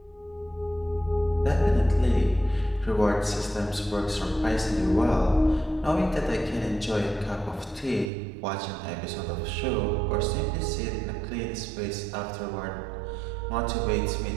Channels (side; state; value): left; drops out; at 8.1 s